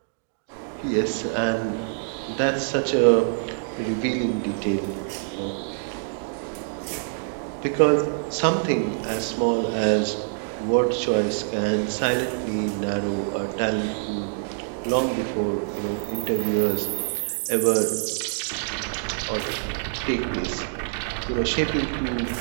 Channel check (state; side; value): silent; left; digital silence